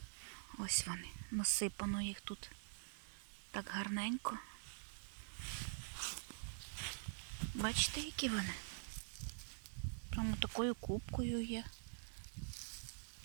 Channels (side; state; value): left; silent; digital silence